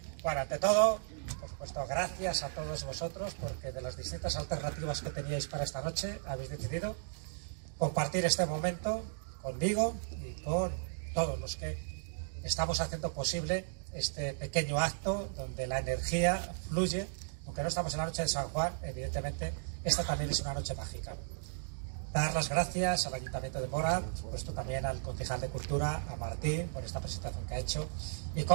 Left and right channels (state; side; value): silent; left; digital silence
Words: Bueno, ante todo, por supuesto, gracias a todos vosotros porque de las distintas alternativas que teníais para esta noche habéis decidido compartir este momento conmigo y con todos los que estamos haciendo posible este pequeño acto donde la energía fluye. Aunque no estamos en la noche de San Juan, evidentemente esta también es una noche mágica. Dar las gracias al Ayuntamiento de Móra, por supuesto también al concejal de Cultura, a Martín, por esta presentación que ha hecho, y